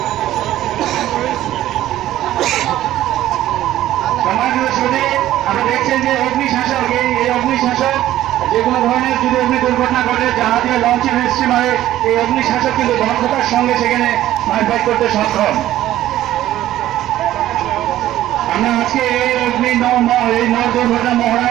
আপনি দেখছেন যে অগ্নিশাসক, এই অগ্নিশাসক যে কোনো ধরনের যদি অগ্নি দুর্ঘটনা ঘটে, জাহাজের লঞ্চের স্টিমারে এই অগ্নিশাসক কিন্তু দক্ষতার সঙ্গে সেখানে ফাইট করতে সক্ষম। আমরা আজকে এই নৌ দুর্ঘটনা মহড়া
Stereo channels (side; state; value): left; quieter; 13.7 dB